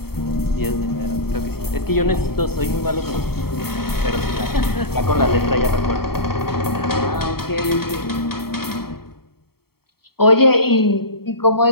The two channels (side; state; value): right; late; 0.95 ms